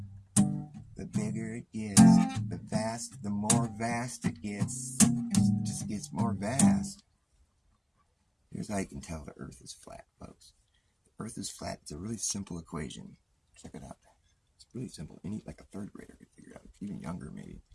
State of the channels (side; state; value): both; identical; correlation 1.00